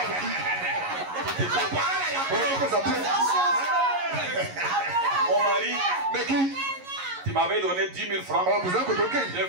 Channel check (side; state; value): left; late; 11 ms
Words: mari, tu m'avais donné 10 000 francs. J'ai